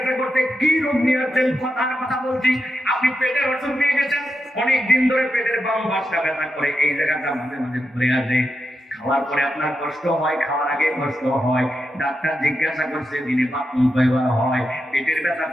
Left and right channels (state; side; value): normal; both; correlation 0.87